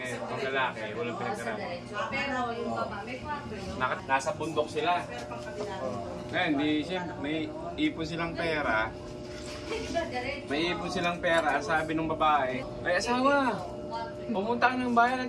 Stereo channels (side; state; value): both; identical; correlation 1.00